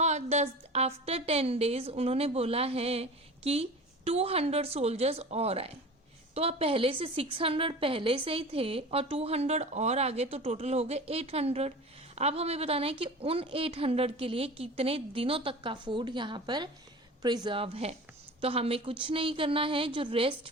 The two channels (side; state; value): both; normal; correlation 0.36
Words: आफ्टर 10 डेज उन्होंने बोला है कि 200 सोल्जर्स और आए. तो अब पहले से 600 पहले से ही थे और 200 और आगे, तो टोटल हो गए 800. अब हमें बताना है कि उन 800 के लिए कितने दिनों तक का फूड यहाँ पर प्रिजर्व है. तो हमें कुछ नहीं करना है, जो रेस्ट